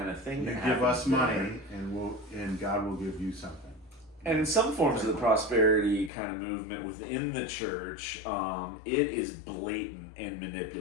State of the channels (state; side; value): drops out; right; at 6.1 s